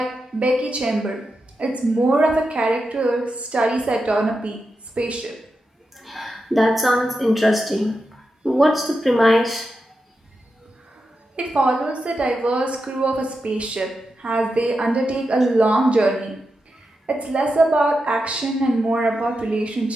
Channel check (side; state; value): both; normal; correlation 0.88